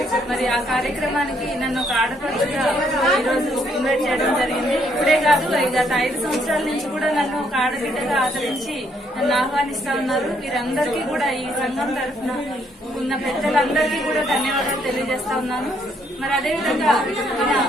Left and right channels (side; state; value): both; normal; correlation 0.70